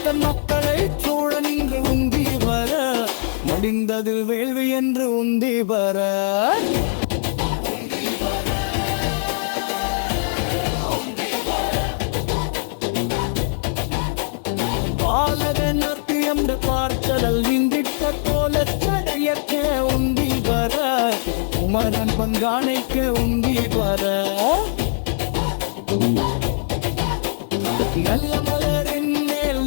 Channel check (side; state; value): right; silent; 65 dB below the other